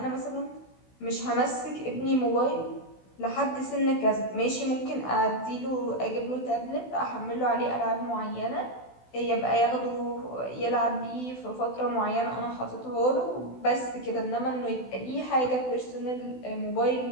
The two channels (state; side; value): late; right; 16 ms